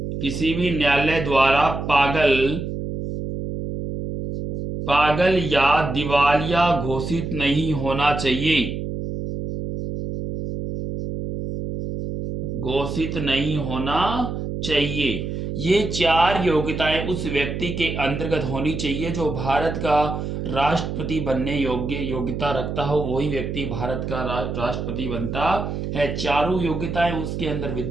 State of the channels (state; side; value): noise; right; hum, 5 dB below the sound